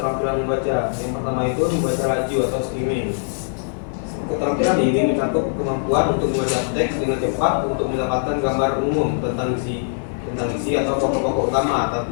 membaca. Yang pertama itu membaca laju atau skimming. Keterampilan ini mencakup kemampuan untuk membaca teks dengan cepat untuk mendapatkan gambar umum tentang isi atau pokok-pokok utama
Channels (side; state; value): right; silent; digital silence